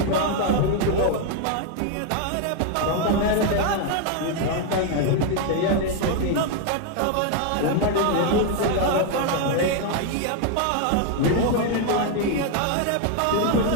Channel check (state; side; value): different; both; correlation 0.01